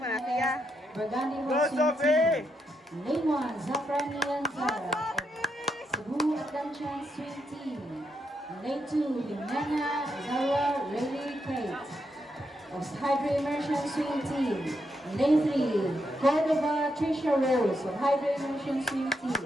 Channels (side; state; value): both; normal; correlation 0.81